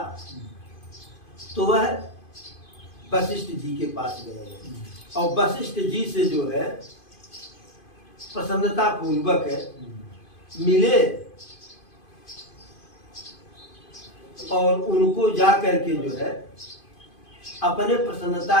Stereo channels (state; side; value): late; right; 2.5 ms